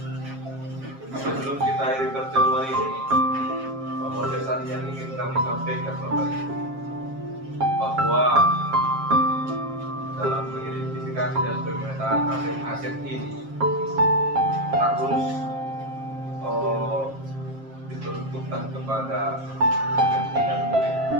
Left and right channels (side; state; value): left; late; 7.5 ms